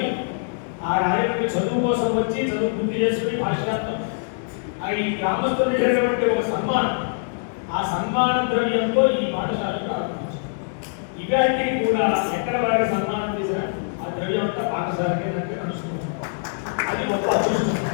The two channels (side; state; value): right; silent; digital silence